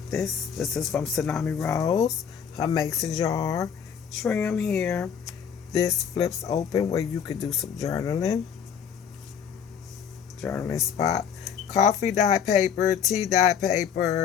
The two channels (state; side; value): quieter; right; 7.6 dB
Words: this. This is from Tsunami Rose. Her mason jar. Trim here. This flips open where you could do some journaling. Journaling spot. Coffee dye paper, tea dye